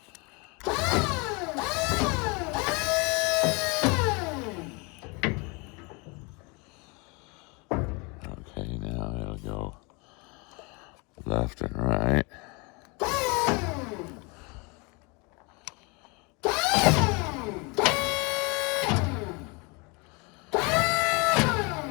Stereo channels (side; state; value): right; quieter; 29.5 dB